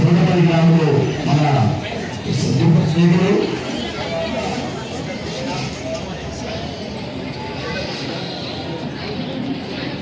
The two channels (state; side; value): identical; both; correlation 1.00